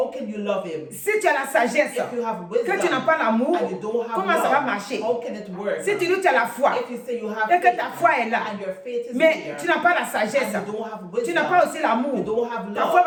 can you love him? Si tu as la sagesse, If you have que tu wisdom n'as pas l'amour, and you don't have comment ça va love, marcher? how can it work? Si tu dis que tu as la foi If you say you have et que faith ta foi est là, and your faith is mais here, tu n'as pas la sagesse, and you don't have tu wisdom, n'as pas aussi you l'amour, don't have ta love, foi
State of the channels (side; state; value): both; identical; correlation 1.00